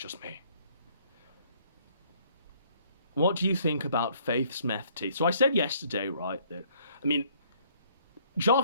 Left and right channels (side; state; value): both; inverted; correlation -0.62